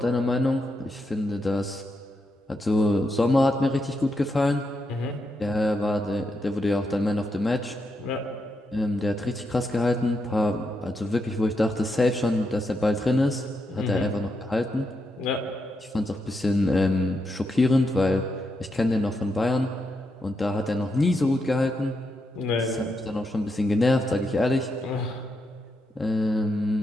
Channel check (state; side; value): normal; both; correlation 0.83